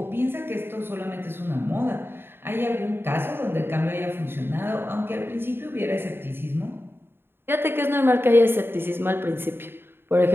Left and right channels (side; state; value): left; late; 0.11 ms